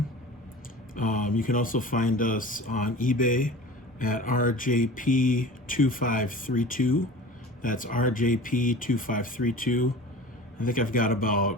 You can also find us on eBay at RJP2532. That's RJP2532. I think I've got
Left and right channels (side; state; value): both; normal; correlation 0.38